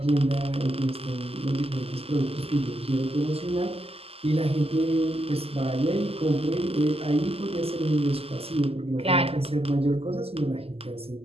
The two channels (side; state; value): left; late; 0.29 ms